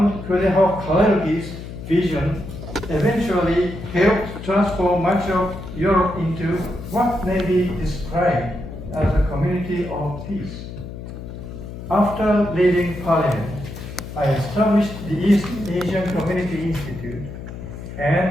Kalergi's vision eventually helped transform much of Europe into what may be described as a community of peace. After leaving Parliament, I established the East Asian Community Institute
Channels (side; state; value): left; noise; hum, 10 dB below the sound